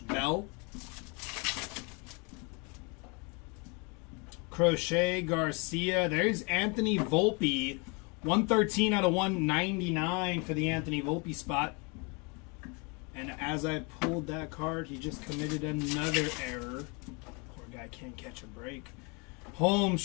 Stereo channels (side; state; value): right; quieter; 31.6 dB